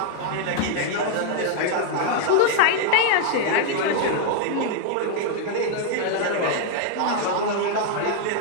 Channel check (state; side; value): different; both; correlation 0.00